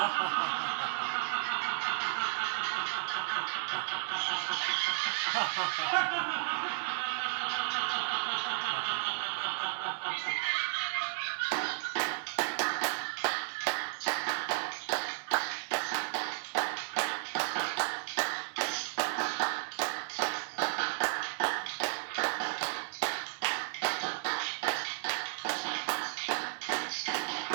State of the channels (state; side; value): silent; left; digital silence